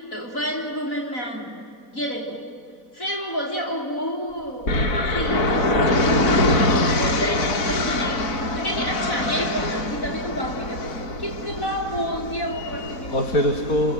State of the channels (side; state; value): right; late; 4.0 ms